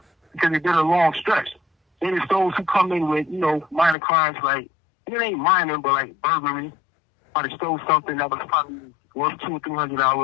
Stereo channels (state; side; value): drops out; right; at 4.0 s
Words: because they did a long stretch. Then it's those who come in with, minor crimes like, it ain't minor, but like burglary, or they stole something that was probably worth $200 or